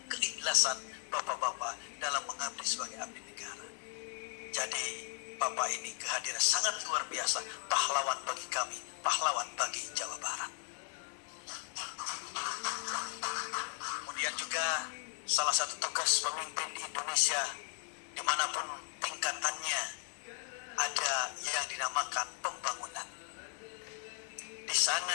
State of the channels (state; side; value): quieter; right; 39.5 dB